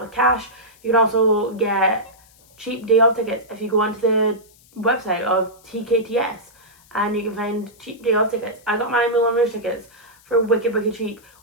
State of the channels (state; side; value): noise; left; hiss, 28 dB below the sound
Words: cash. You can also get cheap day off tickets if you go onto the website of TKTS and you can find cheap day off tickets. I got my Moulin Rouge tickets for wicked cheap.